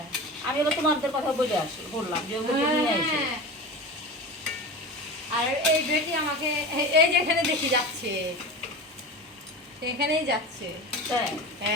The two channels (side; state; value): both; normal; correlation 0.30